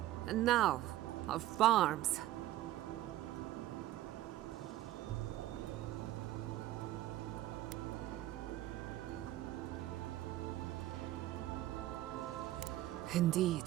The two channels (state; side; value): quieter; left; 14.7 dB